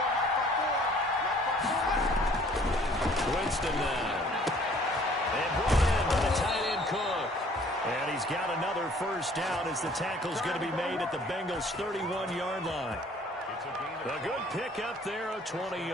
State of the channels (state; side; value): normal; both; correlation 0.56